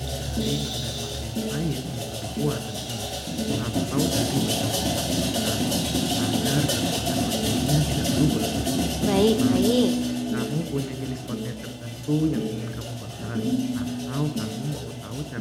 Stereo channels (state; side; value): identical; both; correlation 1.00